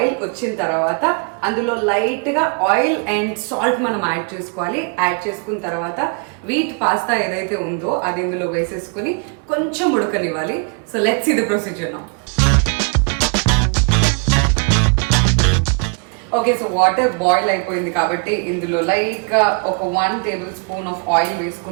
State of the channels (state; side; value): quieter; left; 37.8 dB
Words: వచ్చిన తర్వాత అందులో లైట్గా ఆయిల్ అండ్ సాల్ట్ మనం యాడ్ చేసుకోవాలి. యాడ్ చేసుకున్న తర్వాత వీట్ పాస్తా ఏదైతే ఉందో అది ఇందులో వేసేసుకుని కొంచెం ఉడకనివ్వాలి. So let's see the procedure now. Okay, so water boil అయిపోయింది కాబట్టి ఇందులో లైక్ ఒక 1 టేబుల్ స్పూన్ ఆఫ్ ఆయిల్